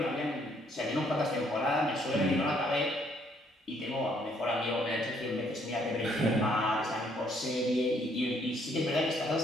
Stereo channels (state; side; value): normal; both; correlation 0.67